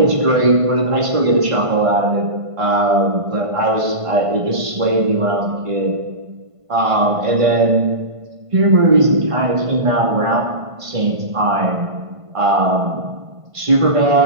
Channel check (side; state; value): left; late; 1.5 ms